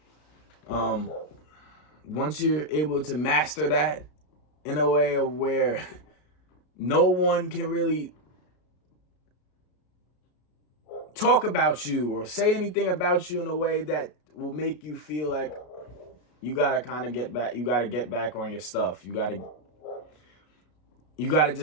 once you're able to master that in a way of where no one can really talk about you or say anything about you in a way that will make you feel like you gotta kind of get back. You gotta get back on your stuff. You gotta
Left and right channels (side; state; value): right; late; 33 ms